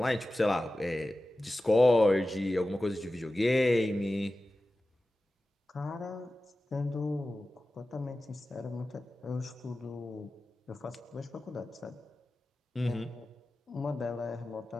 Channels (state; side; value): normal; both; correlation 0.95